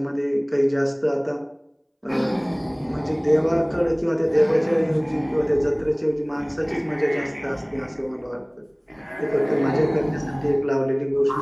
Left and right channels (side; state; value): both; identical; correlation 1.00